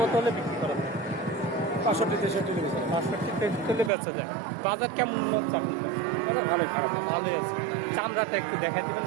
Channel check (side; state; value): left; drops out; at 3.9 s